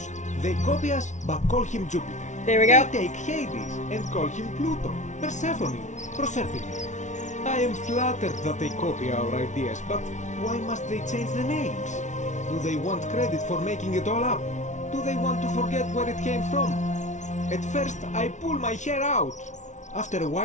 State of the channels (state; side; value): late; right; 0.35 ms